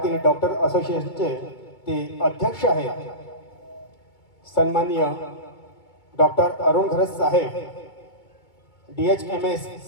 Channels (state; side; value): late; right; 2.2 ms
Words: डॉक्टर असोसिएशनचे ते अध्यक्ष आहेत सन्माननीय डॉक्टर अरुण घरत साहेब, DHMS